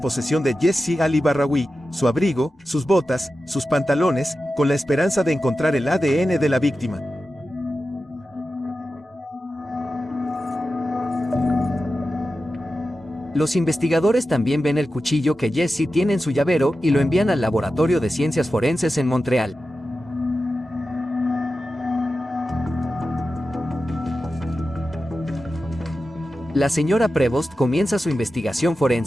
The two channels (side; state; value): both; normal; correlation 0.92